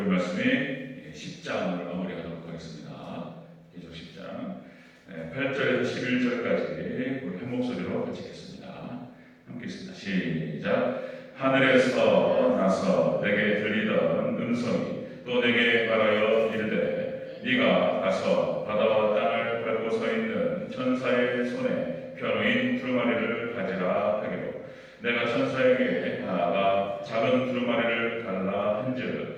말씀이 10장을 마무리하도록 하겠습니다. 계속 10장 8절에서 11절까지 우리 한 목소리로 같이 읽겠습니다. 함께 읽습니다. 시작. 하늘에서 나서 내게 들리던 음성이 또 내게 말하여 이르되 네가 가서 바다와 땅을 밟고 서 있는 천사의 손에 펴놓인 두루마리를 가지라 하기로 내가 천사에게 나아가 작은 두루마리를 달라 한즉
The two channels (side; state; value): both; identical; correlation 1.00